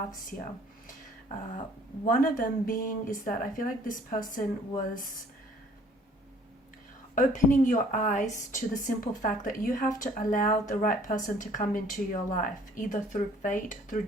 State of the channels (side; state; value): both; normal; correlation 0.56